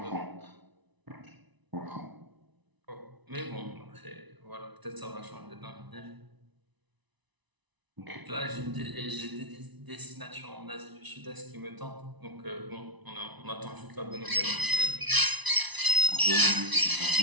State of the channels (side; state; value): left; late; 1.0 ms